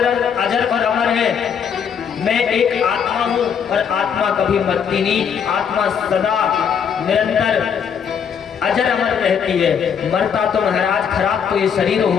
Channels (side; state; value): right; quieter; 7.4 dB